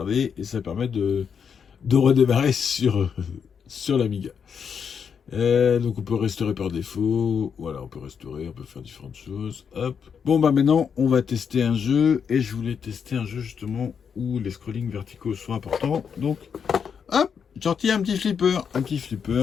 et ça permet de redémarrer sur l'Amiga. Donc on peut restaurer par défaut. Voilà, on peut restaurer, on peut faire différentes choses. Hop. Bon bah maintenant, on va tester un jeu, et je voulais tester un jeu justement où les scrollings verticaux sont importants. Donc, hop, j'ai retiré un petit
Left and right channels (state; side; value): quieter; right; 6.9 dB